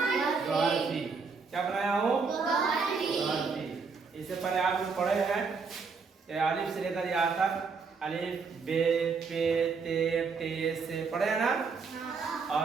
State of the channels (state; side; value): quieter; left; 5.0 dB